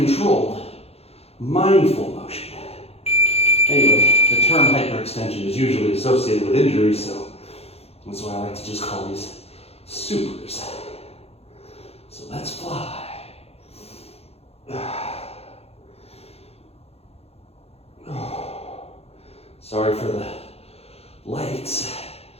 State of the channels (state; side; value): late; right; 0.29 ms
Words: mindful motion. Anyway, the term hyperextension is usually associated with injuries, so that's why I like to just call these supers. So let's fly. Sorry for the lights.